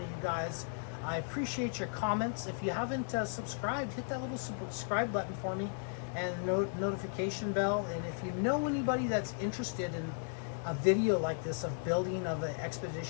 of you guys. I appreciate your comments. If you haven't subscribed, hit that little subscribe button for me, and notification bell. And if you know anybody that's interested in a video like this of building of an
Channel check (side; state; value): right; silent; digital silence